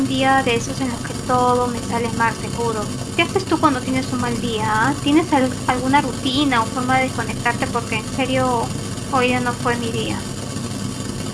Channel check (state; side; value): identical; both; correlation 1.00